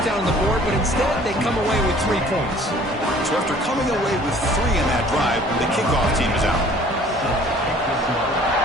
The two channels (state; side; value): normal; both; correlation 0.53